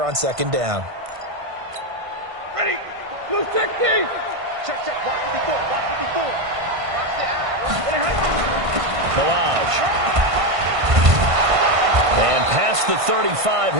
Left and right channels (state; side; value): late; left; 1.5 ms